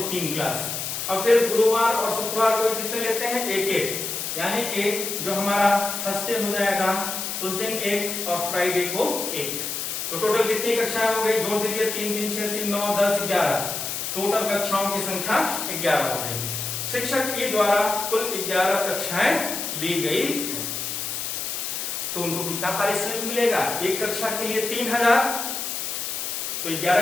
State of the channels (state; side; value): noise; left; hiss, 4 dB below the sound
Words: 3 क्लास और फिर गुरुवार और शुक्रवार को कितने लेते हैं, 1-1, यानी कि जो हमारा थर्सडे हो जाएगा उस दिन 1 और फ्राइडे को 1। तो टोटल कितनी कक्षाएं हो गई, जोड़ दीजिए, 3 3 6 3 9 10 11, टोटल कक्षाओं की संख्या 11 हो गई। शिक्षक ई द्वारा कुल 11 कक्षाएं ली गई है। तो उनको कितना पारिश्रमिक मिलेगा, एक कक्षा के लिए 3000, तो